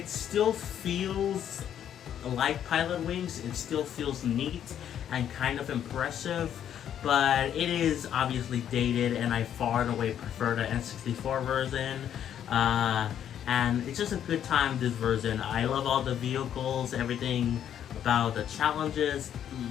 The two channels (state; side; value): quieter; right; 9.8 dB